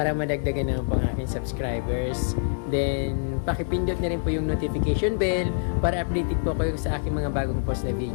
madagdagan naman po ang aking subscribers. Then, pakipindot na rin po yung notification bell para updated po kayo sa aking mga bagong post na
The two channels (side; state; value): right; silent; digital silence